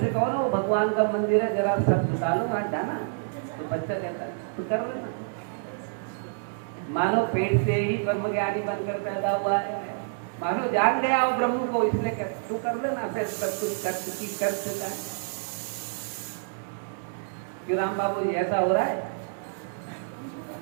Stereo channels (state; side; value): silent; left; 60 dB below the other